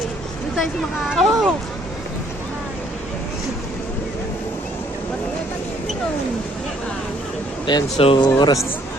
Doon tayo sa mga... Oh! Ayan, so oras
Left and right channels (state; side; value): normal; both; correlation 0.64